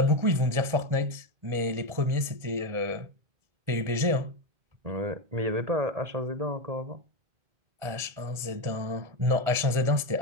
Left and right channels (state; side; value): late; left; 1.4 ms